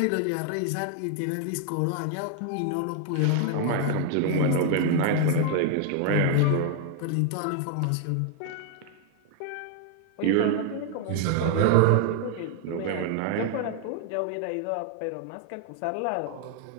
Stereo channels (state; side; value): different; both; correlation 0.00